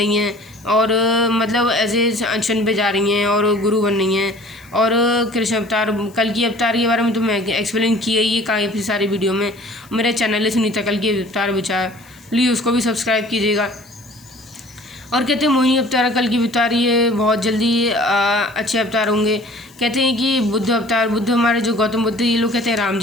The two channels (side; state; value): left; noise; hiss, 27 dB below the sound